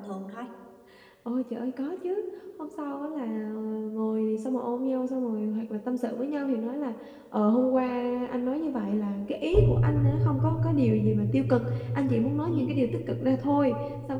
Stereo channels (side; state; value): both; identical; correlation 1.00